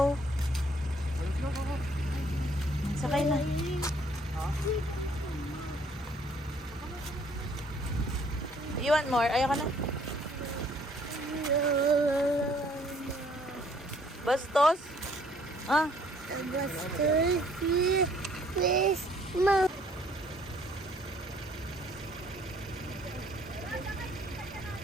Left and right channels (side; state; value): both; normal; correlation 0.62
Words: Sakay na. You want more? Ayaw ka na? Bastos? Ah, Please, Mom.